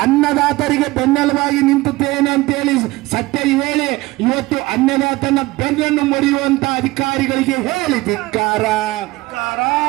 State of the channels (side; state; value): left; quieter; 20.3 dB